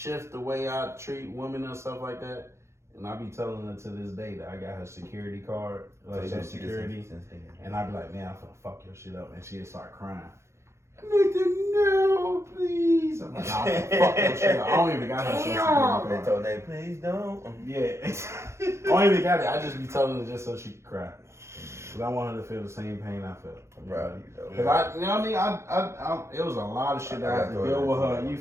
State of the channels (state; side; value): late; left; 0.13 ms